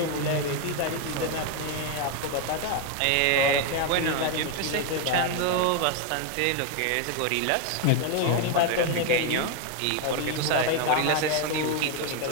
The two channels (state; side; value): different; both; correlation 0.01